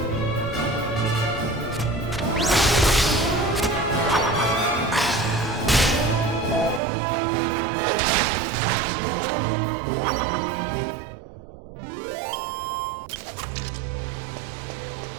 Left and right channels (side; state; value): left; drops out; at 6.8 s